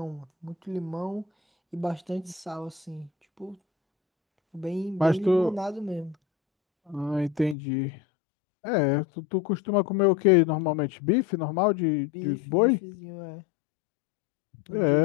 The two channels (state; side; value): drops out; right; at 7.6 s